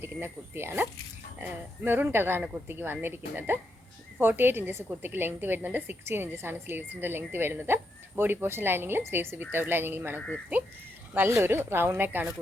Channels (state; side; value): normal; both; correlation 0.81